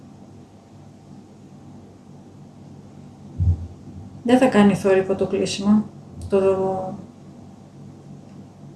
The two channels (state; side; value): identical; both; correlation 1.00